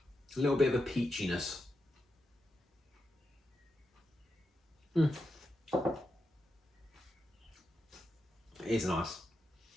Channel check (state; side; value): normal; both; correlation 0.86